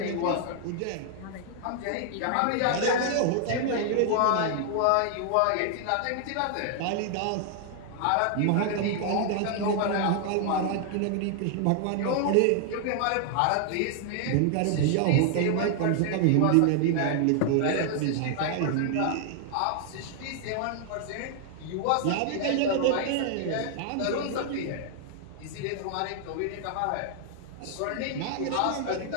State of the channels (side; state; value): both; different; correlation 0.00